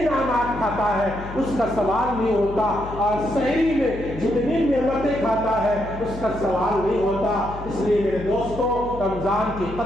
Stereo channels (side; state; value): left; noise; hum, 11 dB below the sound